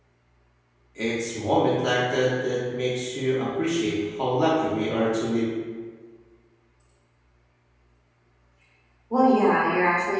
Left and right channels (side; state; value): both; identical; correlation 1.00